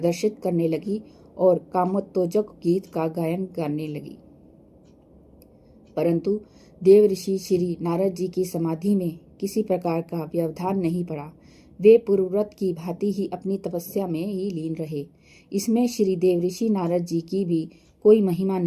करने लगी और कामोत्तेजक गीत का गायन करने लगी। परंतु देव ऋषि श्री नारद जी की समाधि में किसी प्रकार का व्यवधान नहीं पड़ा। वे पूर्वव्रत की भांति ही अपनी तपस्या में ही लीन रहे। इसमें श्री देव ऋषि नारद जी की भी कोई महिमा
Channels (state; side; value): identical; both; correlation 1.00